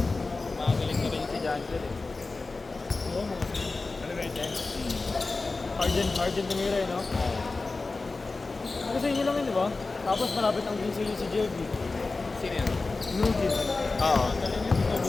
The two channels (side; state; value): right; quieter; 3.7 dB